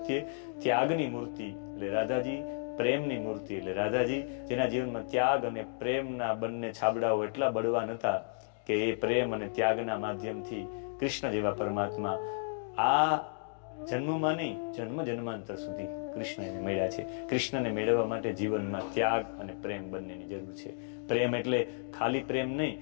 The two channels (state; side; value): silent; right; digital silence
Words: ત્યાગની મૂર્તિ એટલે રાધાજી, પ્રેમની મૂર્તિ એટલે રાધાજી, જેના જીવનમાં ત્યાગ અને પ્રેમના બંને છાબડાઓ એટલા બળવાન હતા કે એ પ્રેમ અને ત્યાગના માધ્યમથી કૃષ્ણ જેવા પરમાત્મા આ જન્મમાં નહીં, જન્મ જન્માંતર સુધી કૃષ્ણ એને મળ્યા છે. કૃષ્ણને મેળવવા માટે જીવનમાં ત્યાગ અને પ્રેમ બંનેની જરૂર છે. પ્રેમ એટલે ખાલી પ્રેમ નહીં,